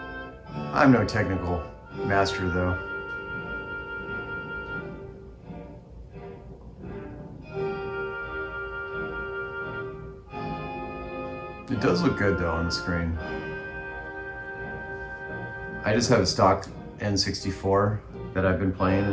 I'm no technical master though. It does look good though on the screen. I just have a stock N64 that I've been playing,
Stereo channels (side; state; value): both; identical; correlation 1.00